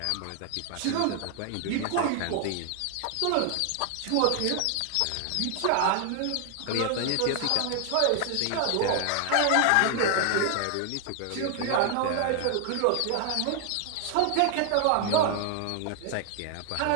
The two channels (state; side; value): different; both; correlation 0.00